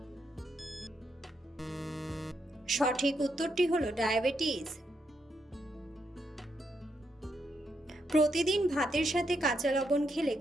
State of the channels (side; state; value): both; normal; correlation 0.80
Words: সঠিক উত্তরটি হলো ডায়াবেটিস। প্রতিদিন ভাতের সাথে কাঁচা লবণ খেলে